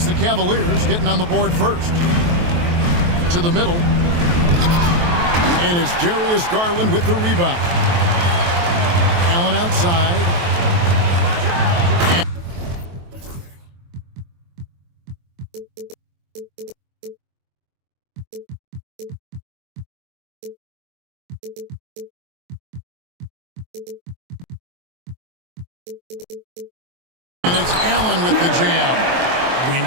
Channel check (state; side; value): late; left; 23 ms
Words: the Cavaliers getting on the board first. To the middle. And it's Darius Garland with the rebound. Allen outside. And it's Allen with the jam. When